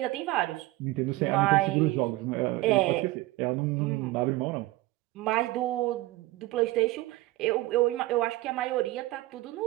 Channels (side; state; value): left; quieter; 18.7 dB